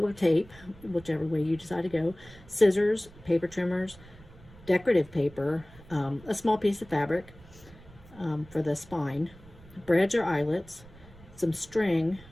or tape, whichever way you decide to go. Scissors, paper trimmers, decorative paper, a small piece of fabric for the spine, brads or eyelets, some string,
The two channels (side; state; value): right; noise; rumble, 21 dB below the sound